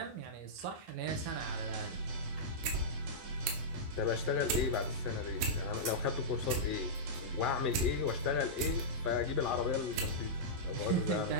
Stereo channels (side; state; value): left; late; 11 ms